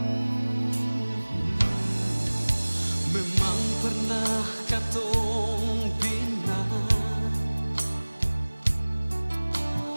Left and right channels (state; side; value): inverted; both; correlation -1.00